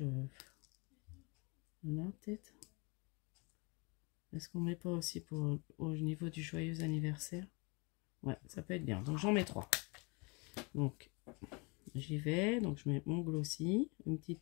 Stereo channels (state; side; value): quieter; right; 30.0 dB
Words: là, peut-être. Est-ce qu'on met pas aussi pour au niveau du joyeux anniversaire? Ouais, ça peut être bien. Donc j'en mets 3. Donc j'y vais. Donc je mets mon glossy, une petite